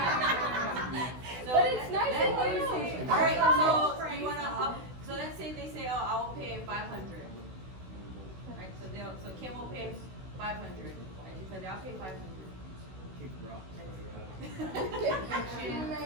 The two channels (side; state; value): left; late; 16 ms